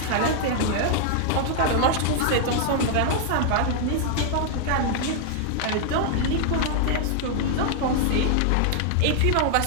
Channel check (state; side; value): different; both; correlation -0.01